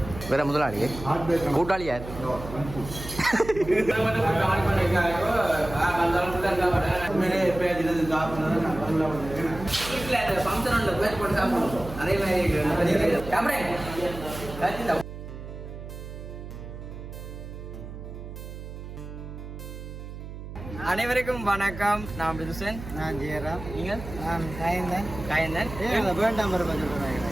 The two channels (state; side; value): noise; right; hum, 11 dB below the sound